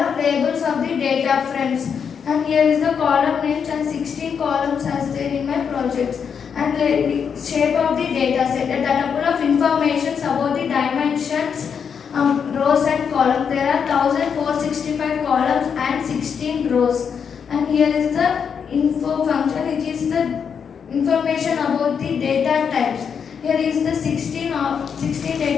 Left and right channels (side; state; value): right; quieter; 6.9 dB